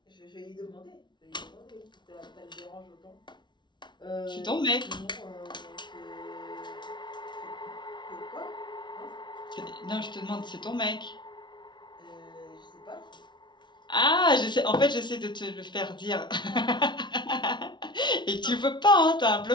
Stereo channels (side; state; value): right; late; 0.22 ms